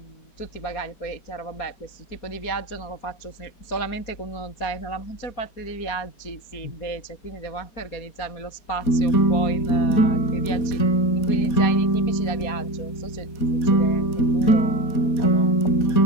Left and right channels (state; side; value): late; right; 4.2 ms